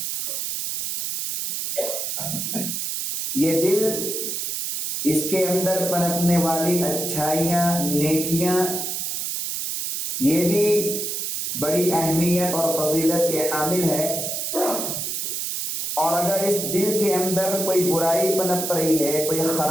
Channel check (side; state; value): right; noise; hiss, 3 dB below the sound